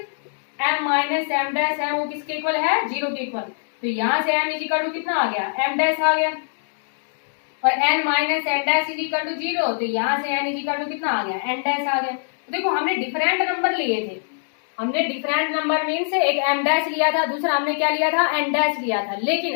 M minus M dash है वो किसके इक्वल है? जीरो के इक्वल। तो यहां से एम इज इक्वल टू कितना आ गया? एम डैश आ गया। और N minus N dash is equal to zero, तो यहां से एन इज इक्वल टू कितना आ गया? एन डैश आ गया। तो देखो, हमने डिफरेंट नंबर लिए थे। हमने डिफरेंट नंबर मीन्स एक एम डैश लिया था, दूसरा हमने क्या लिया था? एन डैश लिया था,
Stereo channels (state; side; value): silent; right; digital silence